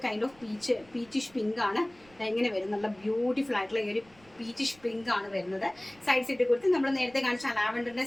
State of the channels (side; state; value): right; noise; rumble, 28 dB below the sound